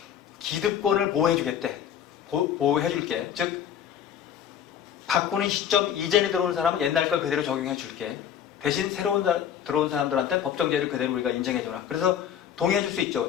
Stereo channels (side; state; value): right; quieter; 9.2 dB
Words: 기득권을 보호해주겠대. 보호해줄게. 즉 바꾸는 시점 이전에 들어온 사람은 옛날 걸 그대로 적용해줄게. 대신 새로운 들어온 사람들한테 법정제를 그대로 우리가 인정해줘라. 그래서 동의해줄 수